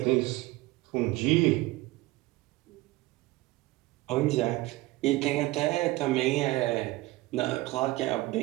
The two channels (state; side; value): quieter; left; 19.2 dB